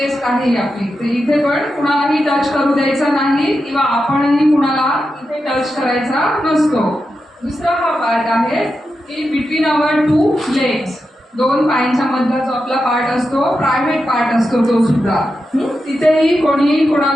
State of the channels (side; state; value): both; normal; correlation 0.88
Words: आहे आपली. तर इथे पण कुणालाही टच करू द्यायचा नाही किंवा आपणही कुणाला इथे टच करायचा नसतो. दुसरा हा पार्ट आहे की बिटवीन आवर टू लेग्स, दोन पायांच्या मधला जो आपला पार्ट असतो, प्रायव्हेट पार्ट असतो तो सुद्धा. तिथेही कोणीही